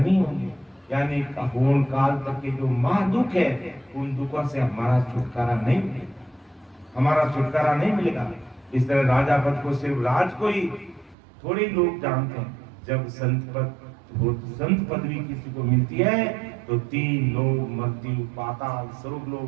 होंगे। यानी होन काल तक के जो महादुख है, उन दुखों से हमारा छुटकारा नहीं मिलेगा, हमारा छुटकारा नहीं मिलेगा। इस तरह राजा पद को सिर्फ राज को ही थोड़े लोग जानते हैं। जब संत पदवी किसी को मिलती है तो 3 लोग, मृत्यु, पाताल, स्वर्ग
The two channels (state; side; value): drops out; left; at 11.2 s